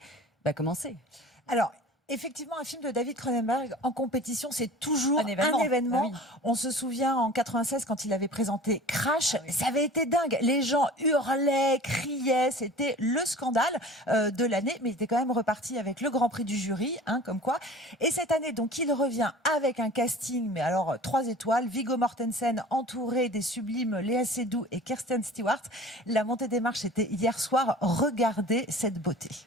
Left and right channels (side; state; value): both; normal; correlation 0.42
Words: comment c'est. Alors, effectivement, un film de David Cronenberg en compétition, c'est toujours un événement. Ah oui. On se souvient en 96 quand il avait présenté Crash, ça avait été dingue. Les gens hurlaient, criaient, c'était le scandale de l'année, mais il était quand même reparti avec le Grand Prix du jury, comme quoi. Et cette année, donc, il revient avec un casting, mais alors 3 étoiles, Viggo Mortensen entouré des sublimes Léa Seydoux et Kirsten Stewart. La montée des marches était hier soir. Regardez cette beauté.